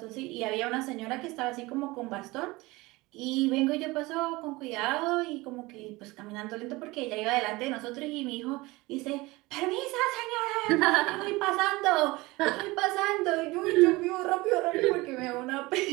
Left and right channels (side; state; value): left; quieter; 21.8 dB